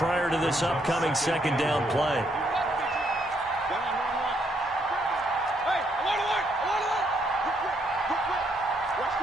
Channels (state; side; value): normal; both; correlation 0.73